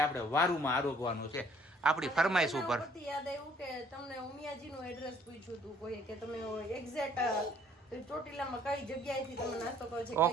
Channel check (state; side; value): normal; both; correlation 0.60